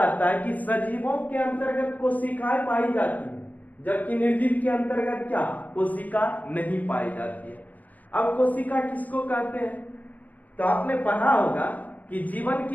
है कि सजीवों के अंतर्गत कोशिकाएं पाई जाती है, जबकि निर्जीव के अंतर्गत क्या? कोशिका नहीं पाई जाती है। अब कोशिका किसको कहते हैं? तो आपने पढ़ा होगा कि जीवन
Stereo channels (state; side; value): late; right; 0.079 ms